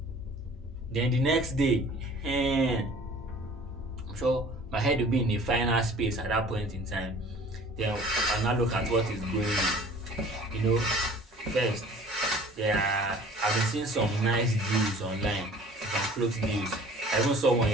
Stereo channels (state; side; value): normal; both; correlation 0.48